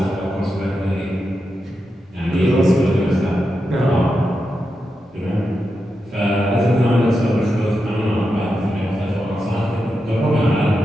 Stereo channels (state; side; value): normal; both; correlation 0.88